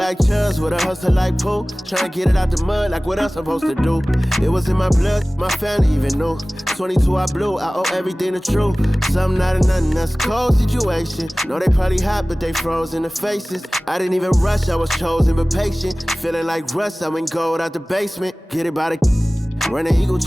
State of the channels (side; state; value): both; normal; correlation 0.98